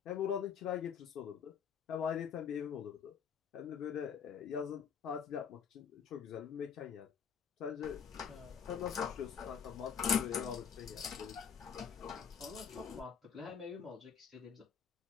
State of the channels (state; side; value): quieter; right; 7.3 dB